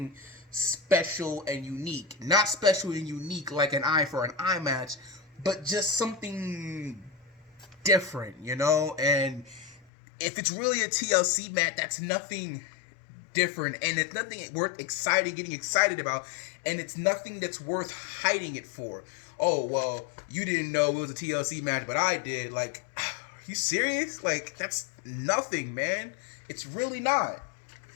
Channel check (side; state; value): right; drops out; at 9.9 s